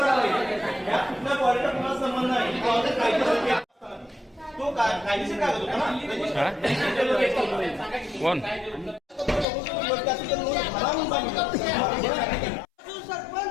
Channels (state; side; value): drops out; right; at 9.5 s